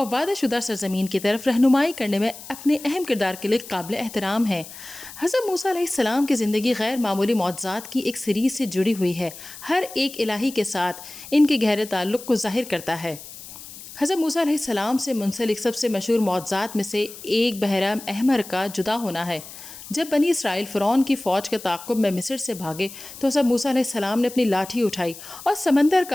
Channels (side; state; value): left; noise; hiss, 15 dB below the sound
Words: وعدہ شدہ سرزمین کی طرف رہنمائی کرنے میں اپنے اہم کردار کے لیے قابل احترام ہیں۔ حضرت موسیٰ علیہ السلام کی زندگی غیر معمولی معجزات کی ایک سیریز سے جڑی ہوئی ہے، ہر ایک الہی کے ساتھ ان کے گہرے تعلق کو ظاہر کرتا ہے۔ حضرت موسیٰ علیہ السلام سے منسلک سب سے مشہور معجزات میں سے ایک بحیرہ احمر کا جدا ہونا ہے۔ جب بنی اسرائیل فرعون کی فوج کے تعاقب میں مصر سے بھاگے تو حضرت موسیٰ علیہ السلام نے اپنی لاٹھی اٹھائی اور سمندر